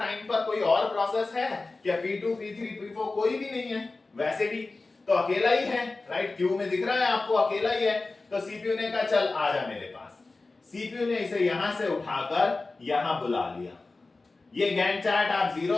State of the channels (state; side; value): quieter; right; 3.5 dB